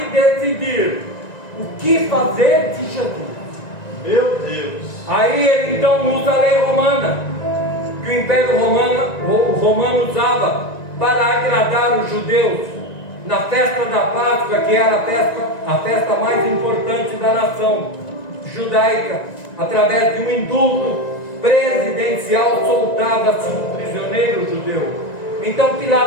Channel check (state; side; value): late; right; 1.9 ms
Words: decidir o que fazer de Jesus. Meu Deus. Aí ele então usa a lei romana, que o Império Romano usava para agradar os judeus na festa da Páscoa, que era a festa mais importante da nação judaica. Através de um indulto presidencial soltava-se um prisioneiro judeu. Então